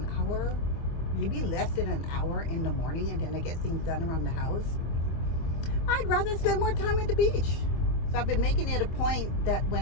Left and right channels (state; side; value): late; right; 24 ms